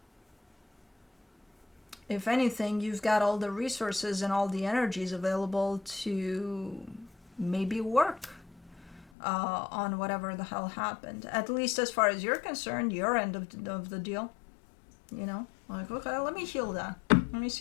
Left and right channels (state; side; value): drops out; right; at 9.1 s